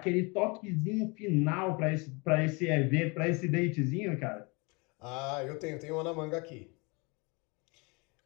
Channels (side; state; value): right; quieter; 28.7 dB